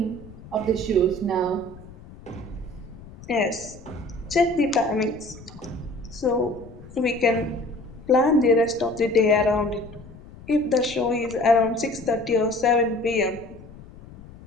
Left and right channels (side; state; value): left; noise; rumble, 18 dB below the sound